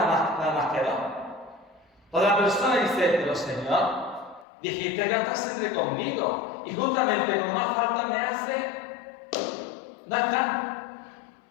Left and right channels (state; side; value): drops out; right; at 4.5 s